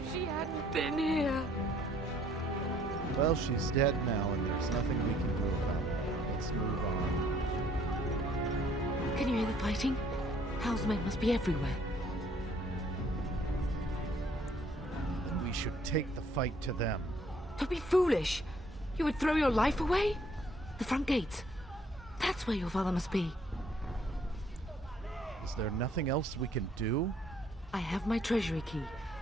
she hadn't been here. Well, she's dead now, and there's nothing we can do about it. Let's move on. Can you hear the fighting? Hal's men must be everywhere. Then we should take the fight to them. Don't be foolish. You would throw your life away? The front gates. That's where your father must be. Is there nothing else we can do? I have my treasury key.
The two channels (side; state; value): both; normal; correlation 0.63